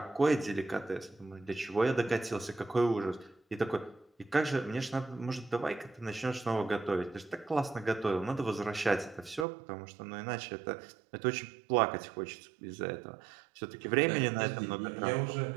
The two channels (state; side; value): drops out; left; at 9.5 s